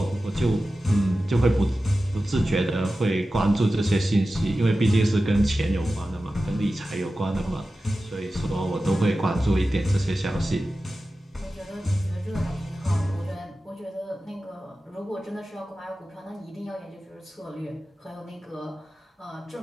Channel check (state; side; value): normal; both; correlation 0.94